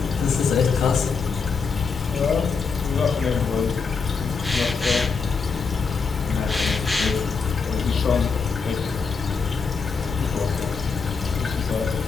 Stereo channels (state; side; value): quieter; right; 5.1 dB